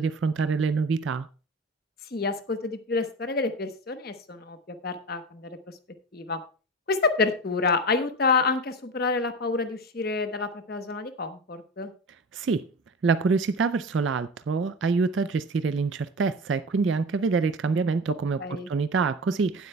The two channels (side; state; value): both; normal; correlation 0.30